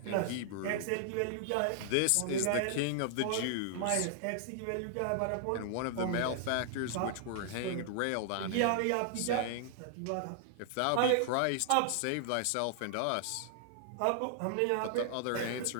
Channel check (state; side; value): different; both; correlation -0.01